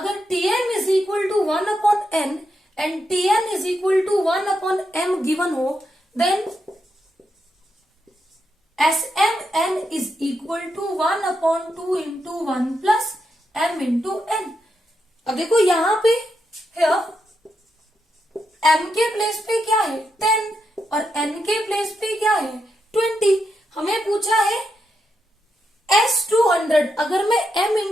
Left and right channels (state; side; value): normal; both; correlation 0.84